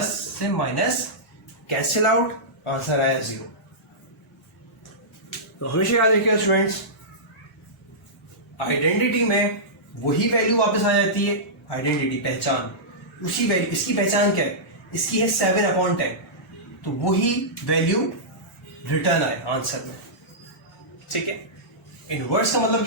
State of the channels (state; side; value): normal; both; correlation -0.15